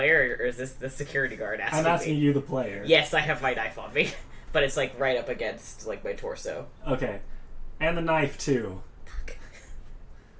or is this the security guard asking I'm asking me? you, the player. Yes, I have my knife on me. But it's, like, right up against, like, my torso. Okay. And the knife, too.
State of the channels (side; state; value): both; identical; correlation 1.00